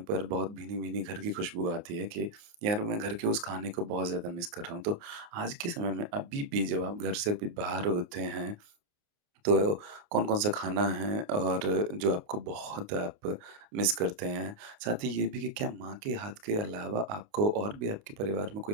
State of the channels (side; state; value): left; late; 29 ms